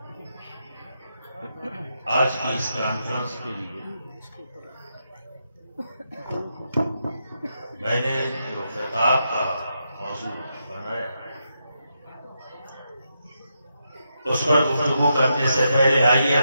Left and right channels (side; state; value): both; inverted; correlation -0.83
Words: آج کی اس کانفرنس کے لیے میں نے جو خطاب کا موضوع بنایا اس پر گفتگو کرنے سے پہلے آئیے